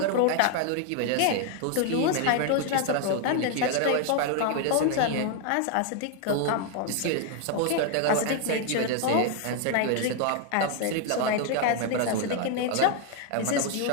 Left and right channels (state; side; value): different; both; correlation 0.00